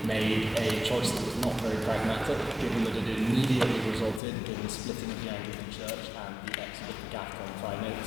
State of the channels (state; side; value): drops out; right; at 4.2 s